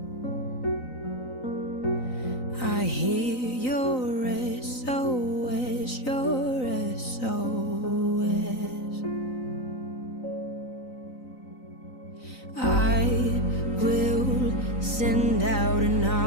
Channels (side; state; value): right; late; 3.9 ms